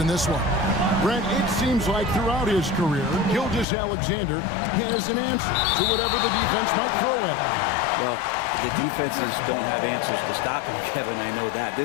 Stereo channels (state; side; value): drops out; right; at 3.7 s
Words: this one. Brent, it seems like throughout his career, Gilgeous-Alexander has an answer to whatever the defense might throw at him. Well, The defenses don't have answers to stop him, Kevin. I know that.